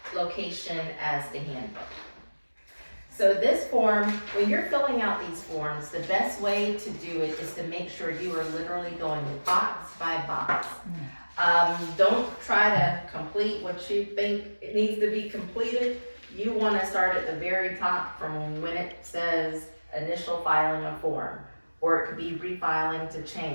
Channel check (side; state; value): both; inverted; correlation -1.00